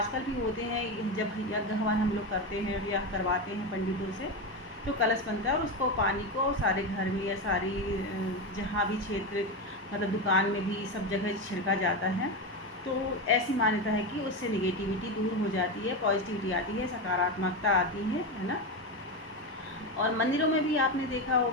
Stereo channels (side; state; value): both; normal; correlation 0.15